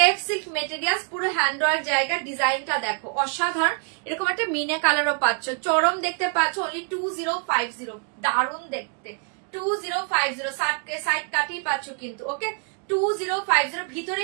সিল্ক মেটেরিয়ালস পুরো হ্যান্ড ওয়ার্ক জায়গা ডিজাইনটা দেখো অসাধারণ এরকম একটা মিনে কালারও পাচ্ছ চরম দেখতে পাচ্ছ অনলি 2050 দারুণ দেখতে 2050 সাইড কাটিয়ে পাচ্ছ কিন্তু ওকে 2050 ভিতরে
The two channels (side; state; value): left; quieter; 39.9 dB